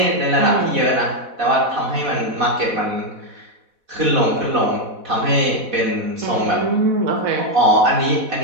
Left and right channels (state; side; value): late; left; 4.1 ms